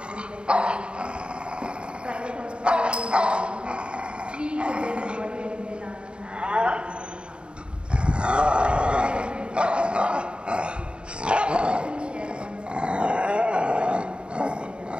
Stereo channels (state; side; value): late; left; 0.053 ms